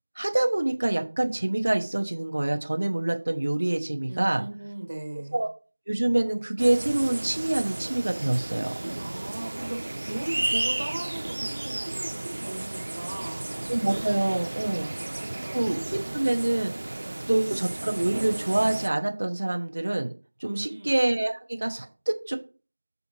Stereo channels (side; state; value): both; inverted; correlation -1.00